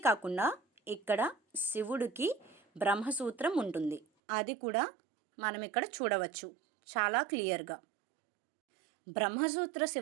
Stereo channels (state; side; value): drops out; left; at 4.0 s